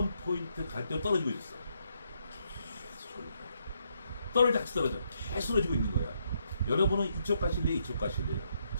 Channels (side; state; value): both; inverted; correlation -0.76